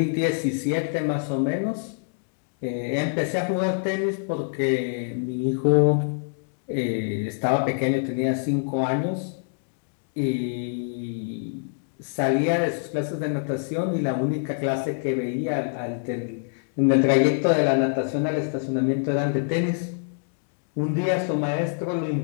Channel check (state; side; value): silent; right; digital silence